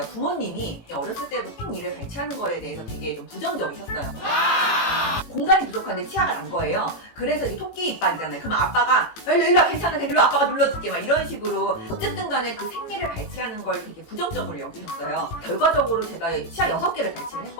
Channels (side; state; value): right; late; 18 ms